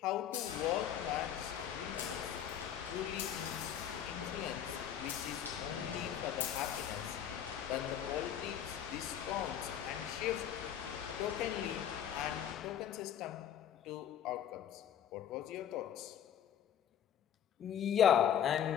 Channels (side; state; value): right; quieter; 9.6 dB